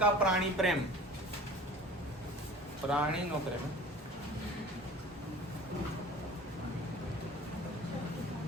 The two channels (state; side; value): normal; both; correlation 0.43